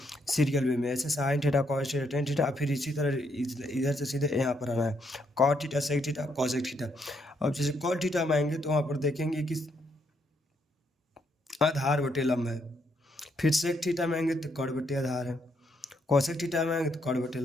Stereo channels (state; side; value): normal; both; correlation 0.75